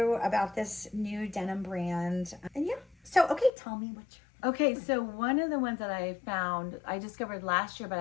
about this new denim brand. And yeah, so okay, tell me what you're... Okay, so one of the ones that I found, I discovered last year, but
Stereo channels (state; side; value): drops out; right; at 3.5 s